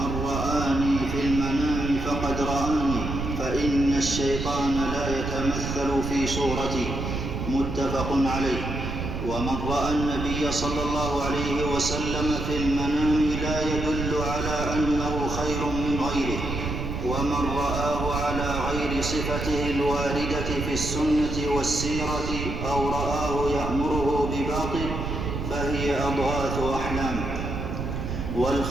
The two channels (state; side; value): noise; right; rumble, 4 dB below the sound